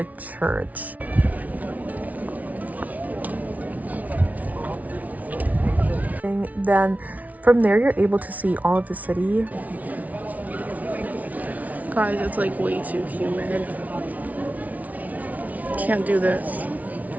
church. Then from there you're able to see all of the city. Guys, it's like way too humid. Can't do this.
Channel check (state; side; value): late; left; 0.072 ms